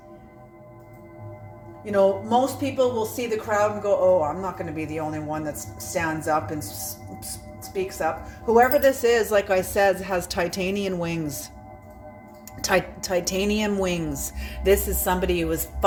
You know, most people will see the crowd and go, oh, I'm not going to be the only one that stands up and speaks up. Whoever this is, like I said, has titanium wings. Titanium wings. This is somebody who is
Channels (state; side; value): identical; both; correlation 1.00